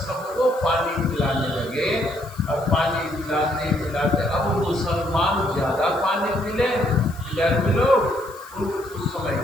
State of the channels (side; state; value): left; noise; hiss, 22 dB below the sound